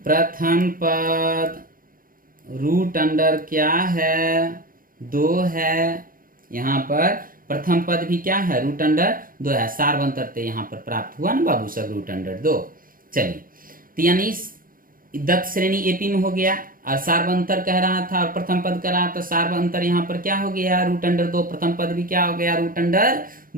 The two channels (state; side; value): late; left; 0.41 ms